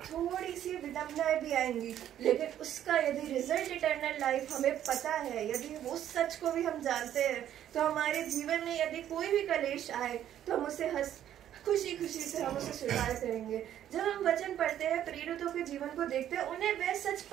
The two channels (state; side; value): quieter; left; 11.0 dB